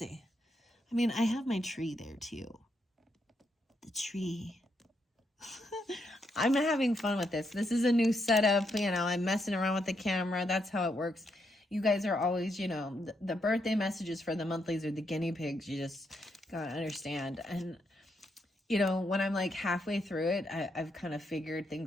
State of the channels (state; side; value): normal; both; correlation 0.79